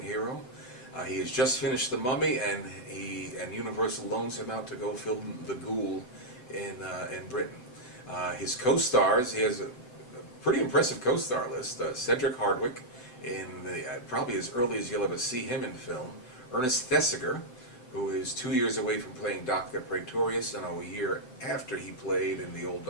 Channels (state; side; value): late; right; 7.8 ms